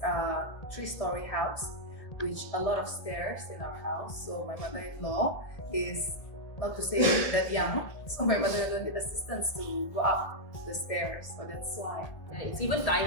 3-story house, which a lot of stairs in our house. So my mother-in-law is not to say that young, so my mother-in-law need assistance to go up the stairs. So that's why. It's even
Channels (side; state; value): right; late; 2.0 ms